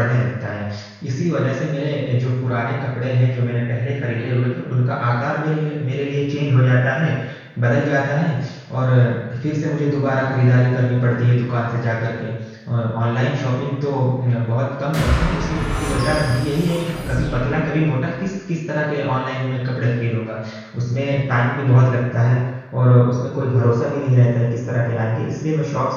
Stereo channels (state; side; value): identical; both; correlation 1.00